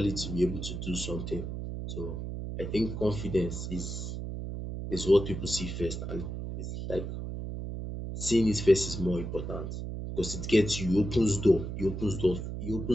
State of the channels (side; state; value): right; noise; hum, 6 dB below the sound